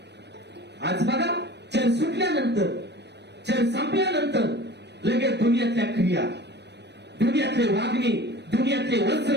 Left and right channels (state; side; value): late; left; 0.50 ms